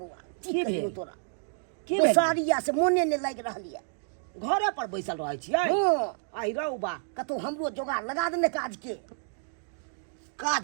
की की भेल? कहियो तोरा की भेल? बेसारिया से मोने नहीं लागि रहलिए। घरे पर बैसल रहै छियै? हाँ, आई रहू बा, कतौ हमरो जोगाड़ लगा देने काज के।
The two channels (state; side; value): silent; left; digital silence